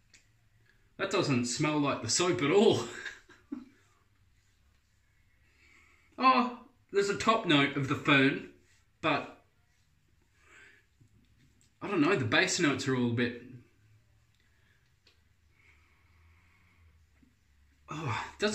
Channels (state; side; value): identical; both; correlation 1.00